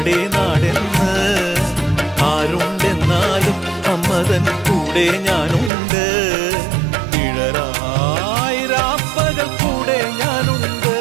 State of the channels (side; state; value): left; drops out; at 5.7 s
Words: നാടെന്ന് ആരുണ്ടെന്നാലും അമ്മതൻ കൂടെ ഞാനുണ്ട്. ഇഴരായിരാപ്പകൽ കൂടെ ഞാനുണ്ട്,